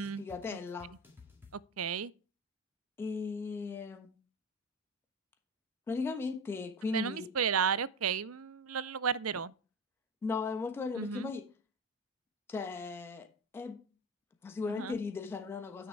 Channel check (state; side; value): normal; both; correlation 0.24